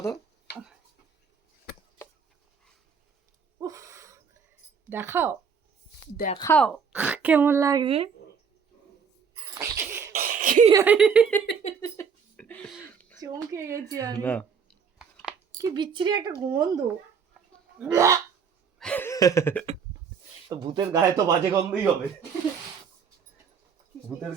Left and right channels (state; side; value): quieter; left; 6.4 dB